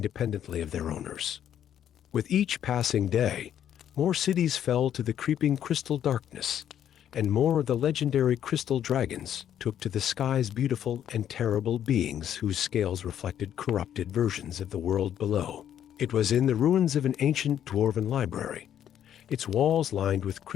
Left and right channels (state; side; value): quieter; right; 10.1 dB